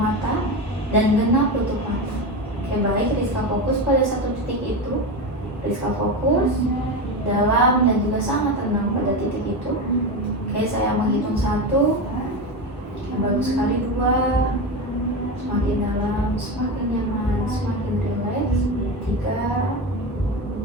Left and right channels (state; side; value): normal; both; correlation 0.19